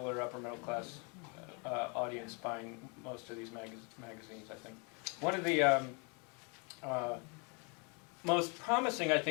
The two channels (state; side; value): quieter; right; 34.1 dB